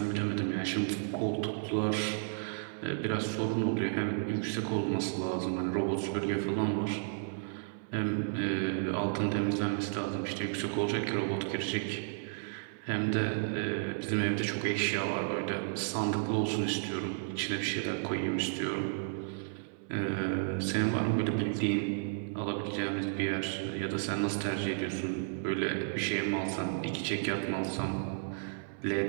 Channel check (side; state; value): left; silent; 56 dB below the other